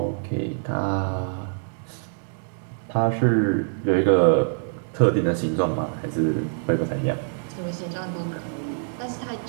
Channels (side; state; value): left; silent; digital silence